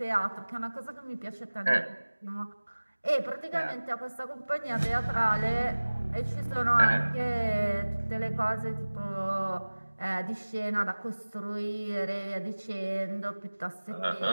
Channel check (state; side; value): inverted; both; correlation -1.00